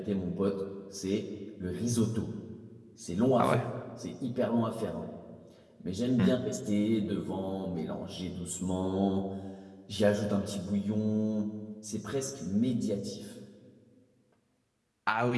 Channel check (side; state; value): both; identical; correlation 1.00